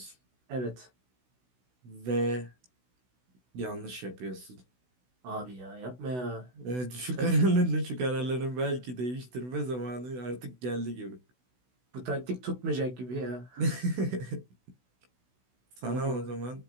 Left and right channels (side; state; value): left; late; 16 ms